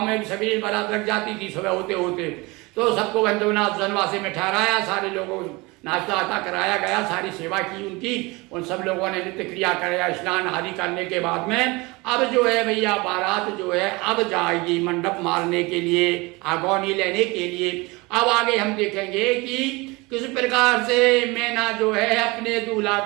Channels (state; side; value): quieter; left; 24.4 dB